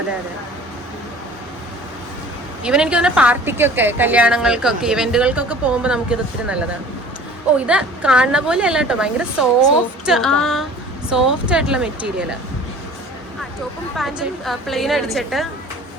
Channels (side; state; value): both; normal; correlation 0.45